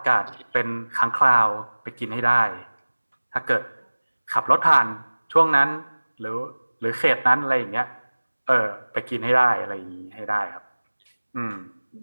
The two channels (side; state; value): both; inverted; correlation -1.00